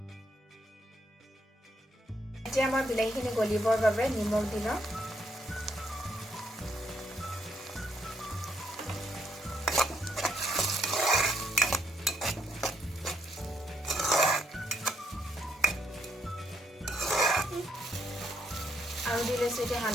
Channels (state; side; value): normal; both; correlation 0.74